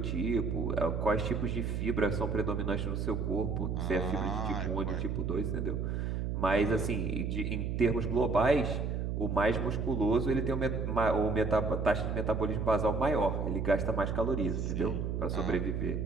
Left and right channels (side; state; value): right; noise; hum, 1 dB below the sound